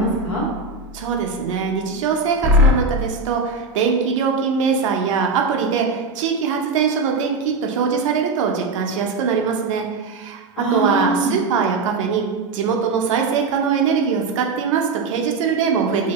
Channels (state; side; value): quieter; left; 4.1 dB